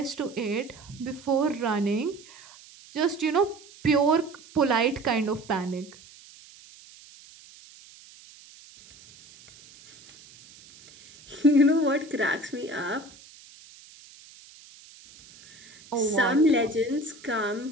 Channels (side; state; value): right; noise; hiss, 22 dB below the sound